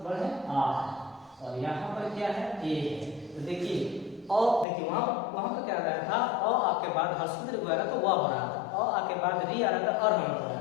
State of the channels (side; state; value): right; drops out; at 4.7 s